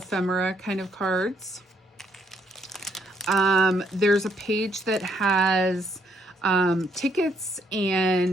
kind of cards. There's a page that has tickets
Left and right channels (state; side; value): normal; both; correlation 0.71